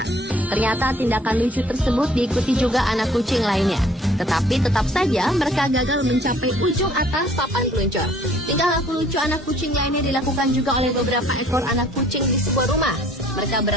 Ternyata tindakan lucu tersebut diikuti juga anak kucing lainnya. Tetapi tetap saja mereka gagal mencapai ujung atas papan peluncur. Tingkah laku lucu anak kucing lainnya dilakukan juga oleh beberapa ekor anak kucing di sebuah rumah. Mereka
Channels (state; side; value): normal; both; correlation 0.57